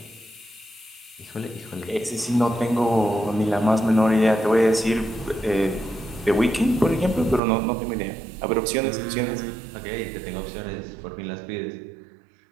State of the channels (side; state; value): left; drops out; at 7.4 s